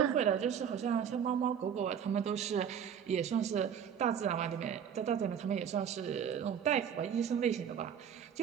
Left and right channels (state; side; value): quieter; left; 8.2 dB